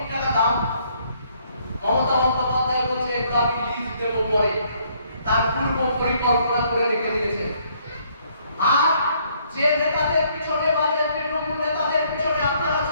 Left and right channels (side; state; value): both; inverted; correlation -0.67